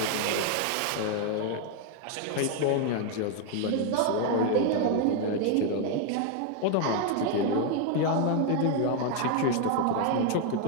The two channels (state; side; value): different; both; correlation 0.00